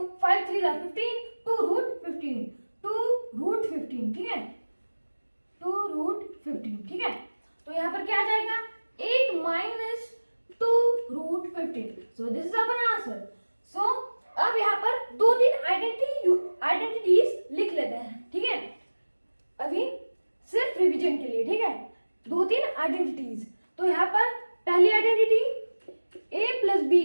5 3 15 2 √15 2 √15। ठीक है, 2 √15। ठीक है, तो यहाँ पर क्या आ जाएगा? 8 minus 2 √15। So this is our answer. So अब यहाँ पर 2-3 आइडेंटिटीज लिख लेते हैं। ठीक है, अभी सिर्फ रिवीजन के लिए। ठीक है, 2-3 आइडेंटिटीज। तो यहाँ पर पहली आइडेंटिटी a +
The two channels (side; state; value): both; inverted; correlation -1.00